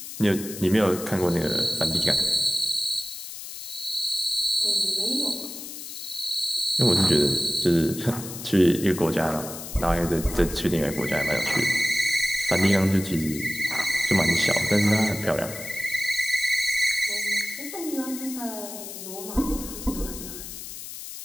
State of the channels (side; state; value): left; noise; hiss, 10 dB below the sound